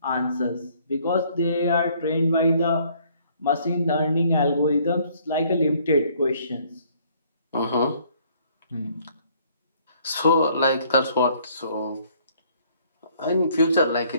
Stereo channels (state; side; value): inverted; both; correlation -0.62